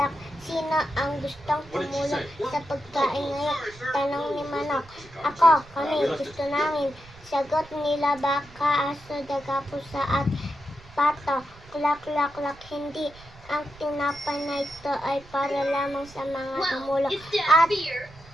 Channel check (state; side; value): noise; right; rumble, 21 dB below the sound